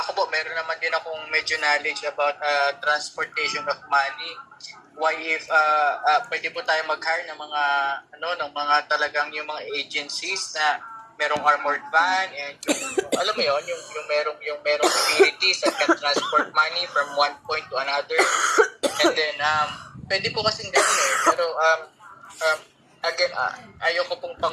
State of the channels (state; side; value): identical; both; correlation 1.00